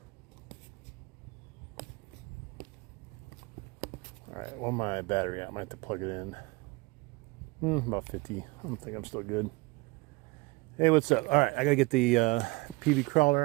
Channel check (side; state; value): left; quieter; 24.7 dB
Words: All right, well, my battery out. I might have to plug it in. About 50. I don't think I'm still good. Hey, what's up? All right, I gotta get the PB crawler